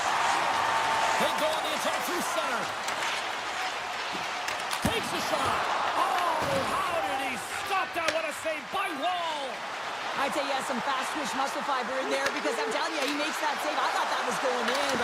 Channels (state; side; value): identical; both; correlation 1.00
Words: They go on the attack through center. Takes a shot. Oh, how did he stop that? What a save by Wall. I'd say he has some fast twitch muscle fiber in there because I'm telling you, he makes that save. I thought that was going in,